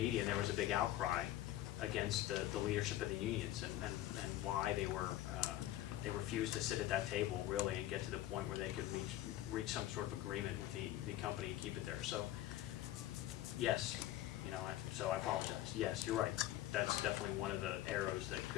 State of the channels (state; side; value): quieter; right; 14.0 dB